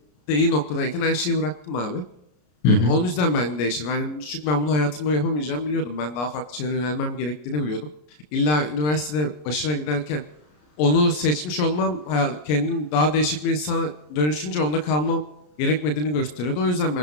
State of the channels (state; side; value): late; right; 33 ms